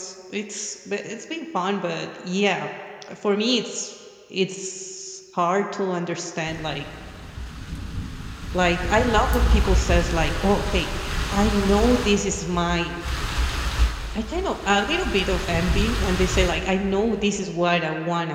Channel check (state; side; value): identical; both; correlation 1.00